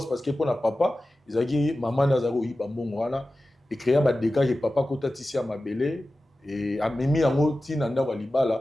parce que pour na papa ils a dit maman na za koyiba mbongo wana et créer ba dégâts que papa kota tisi à mabele et a mimi yango tina nda wa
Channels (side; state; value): both; normal; correlation 0.95